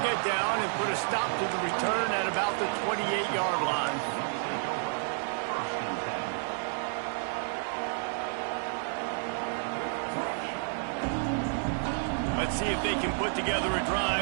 get down and put a stop to the return at about the 28-yard line. Let's see if they can put together a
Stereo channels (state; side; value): silent; left; 58 dB below the other